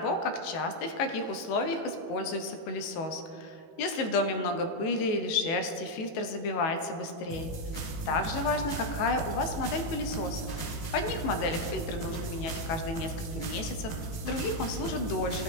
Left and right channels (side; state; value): right; late; 18 ms